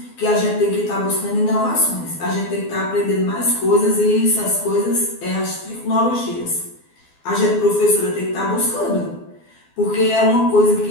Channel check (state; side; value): late; right; 12 ms